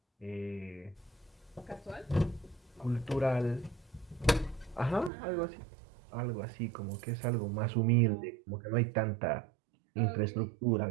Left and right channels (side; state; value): left; drops out; at 5.1 s